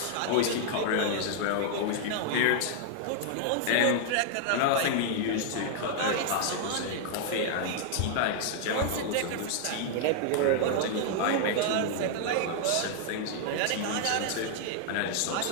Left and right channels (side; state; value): both; different; correlation 0.00